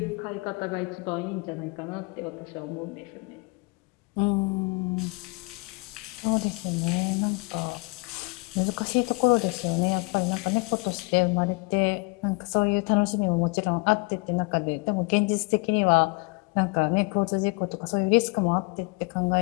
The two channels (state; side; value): quieter; right; 28.9 dB